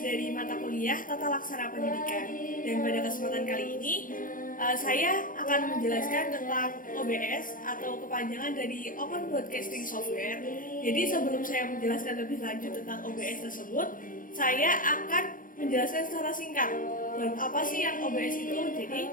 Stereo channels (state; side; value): late; right; 0.40 ms